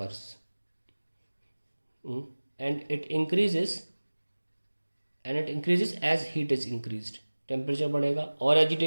and it increases as heat is increased, temperature बढ़ेगा और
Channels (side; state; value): both; inverted; correlation -1.00